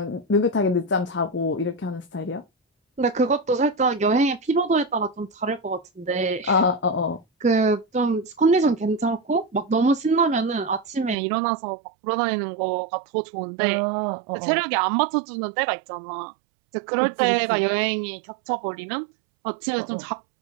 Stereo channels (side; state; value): left; drops out; at 11.2 s